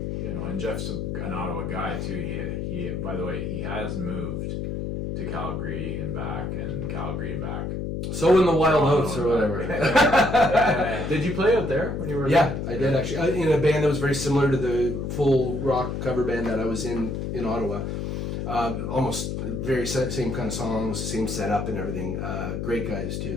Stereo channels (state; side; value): noise; left; hum, 3 dB below the sound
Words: Yeah. You know, and Jeff's an Ottawa guy too. He by the way, he has moved to Calgary and back and Calgary and back. So in the wild oats or whatever. Did you play out there when you were Yeah, I did actually. In a band that was very similar to the full rock cover band that I was in Ottawa. Almost very same kind of songs, same setup and everything. Great guys